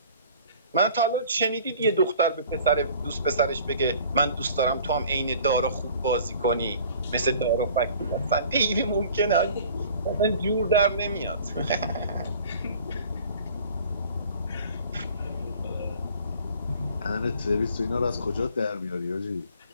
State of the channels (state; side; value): inverted; both; correlation -0.49